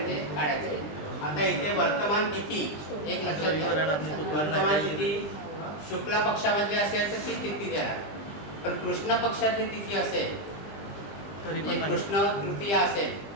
ते काढायचं. आता इथे वर्तमान तिथी एक लक्षात घ्या. वर्तमान तिथी शुक्ल पक्षामधली असेल तर ती तिथी देणार. पण कृष्ण पक्षातली तिथी असेल तरी पण कृष्ण तृतीया असेल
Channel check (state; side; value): late; right; 20 ms